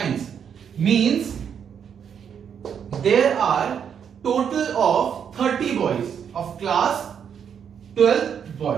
Means there are total of 30 boys of class 12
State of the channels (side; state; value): left; quieter; 7.8 dB